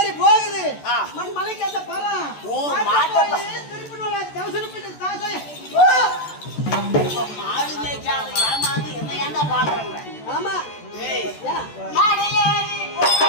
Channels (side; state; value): right; late; 14 ms